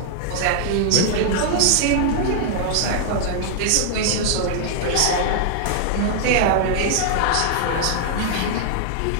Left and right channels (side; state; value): both; different; correlation 0.00